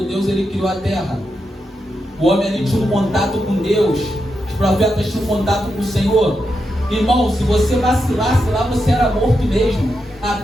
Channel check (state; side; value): normal; both; correlation 0.85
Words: Deus ele criou a terra. O homem ali tinha um contato com Deus. Os profetas tinham um contato com o Senhor. Irmão, se você vacilasse lá, você era morto mesmo. A